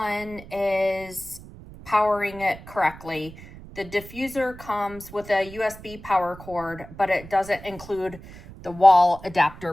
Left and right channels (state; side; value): noise; right; rumble, 17 dB below the sound